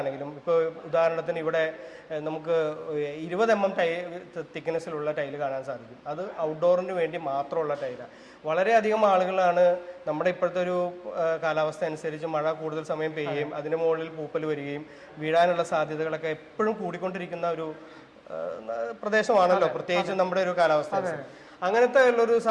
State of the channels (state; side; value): identical; both; correlation 1.00